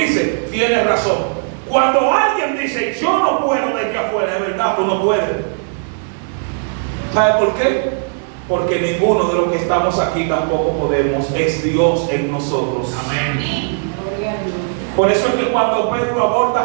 tiene razón. Cuando alguien dice: yo no puedo desde afuera, es verdad, tú no puedes. ¿Sabe por qué? Porque ninguno de los que estamos aquí tampoco podemos. Es Dios en nosotros. Amén. Por eso es que cuando Pedro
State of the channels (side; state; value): left; silent; 60 dB below the other